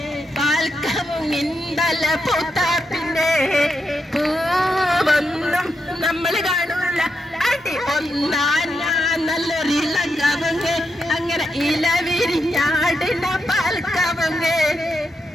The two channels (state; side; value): normal; both; correlation 0.84